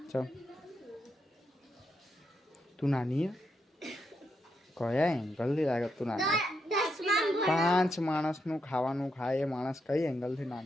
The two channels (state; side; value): normal; both; correlation 0.82